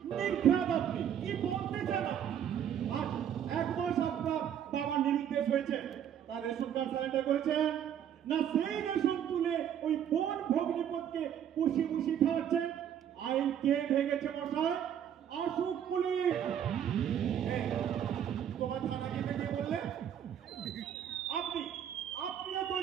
নির্ঘাত আপনি কি বলতে চান আপনি? আর এক মাস আপনার বাবা নিরুদ্দেশ হয়েছে, তার রেশন কার্ড সারেন্ডার করেছেন না? সেই রেশন তুলে ওই বোন ভগ্নিপথকে পুষি পুষি খাওয়াচ্ছেন। আইন কে ভেঙেছে মশাই? আসুক পুলিশ। এই, তোমার থানা যেতে কে বললে? আপনিও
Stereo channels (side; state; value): left; quieter; 9.4 dB